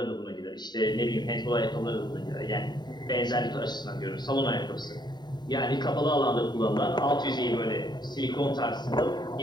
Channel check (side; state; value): right; late; 0.21 ms